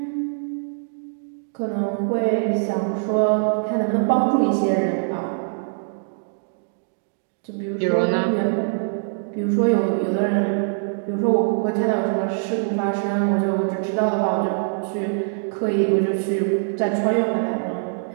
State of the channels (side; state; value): left; silent; digital silence